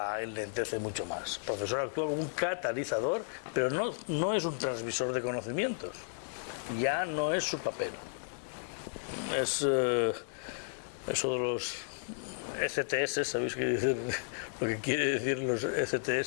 enlentece mucho más. El profesor actúa como un catalizador, pero no es un transmisor de conocimientos. Ya no es su papel. Es eso de los ECTS, ¿sabéis qué dicen? Lo que quiere decir los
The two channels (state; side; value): silent; right; digital silence